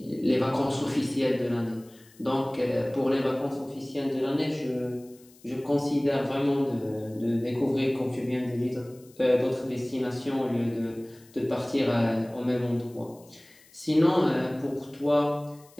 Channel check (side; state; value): left; noise; hiss, 27 dB below the sound